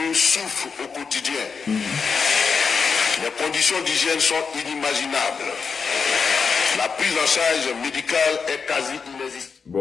souffrent au quotidien. Les conditions d'hygiène sont inimaginables. La prise en charge médicale est quasi inexistante.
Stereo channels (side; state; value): right; quieter; 5.5 dB